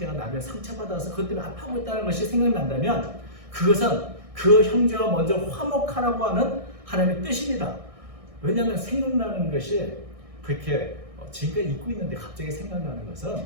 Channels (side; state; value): left; late; 1.6 ms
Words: 나를 상처받아서 그것 때문에 아파하고 있다는 것이 생각난다면 그것은 그 형제가 먼저 화목하라고 하는 하나님의 뜻입니다. 왜냐하면 생각나는 것이 그렇게 지금까지 잊고 있는데 갑자기 생각나는